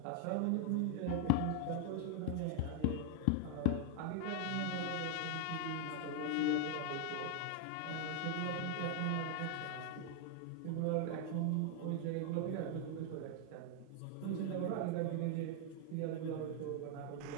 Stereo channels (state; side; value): different; both; correlation 0.00